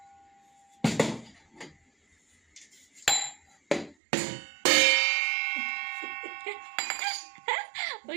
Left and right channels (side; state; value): left; drops out; at 4.0 s